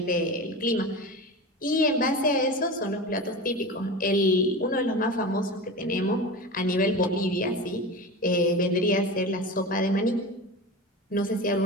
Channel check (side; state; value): both; normal; correlation 0.29